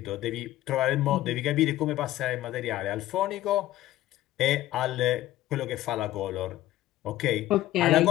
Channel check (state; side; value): quieter; right; 14.9 dB